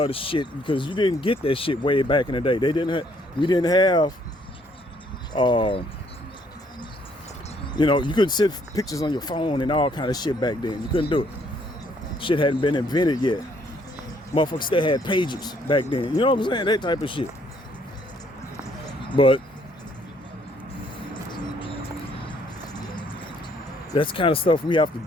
shit, because you didn't get that shit way back in the day. We didn't have you know, you couldn't send pictures on your phone and all kind of shit back then. You couldn't do it. Shit hadn't been invented yet. Motherfuckers still had pages back then. You know what I'm saying? That type of shit. But that's the kind of stuff we have to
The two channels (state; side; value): normal; both; correlation 0.66